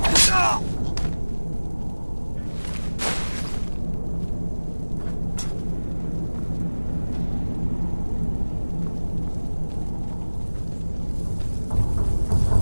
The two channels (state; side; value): inverted; both; correlation -1.00